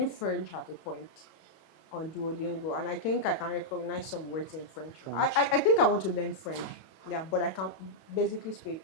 French at a point on Duolingo, and I think I can recognize some words in French. I think I want to learn French. Yeah, but I can basically speak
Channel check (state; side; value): late; right; 31 ms